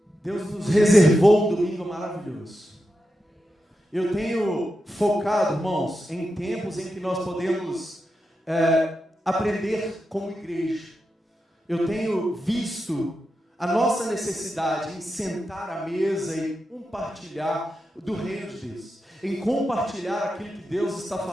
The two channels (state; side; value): normal; both; correlation 0.88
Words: Deus nos reservou um domingo maravilhoso. Eu tenho focado, irmãos, em tempos em que nós podemos aprender como igreja. Eu tenho visto a nossa necessidade em sentar à mesa e compartilhar do reino de Deus, em compartilhar aquilo que Deus está